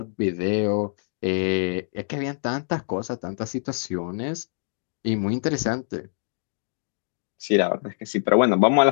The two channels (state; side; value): silent; right; digital silence